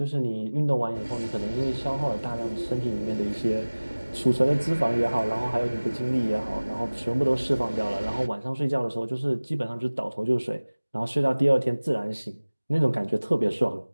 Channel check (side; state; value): both; inverted; correlation -1.00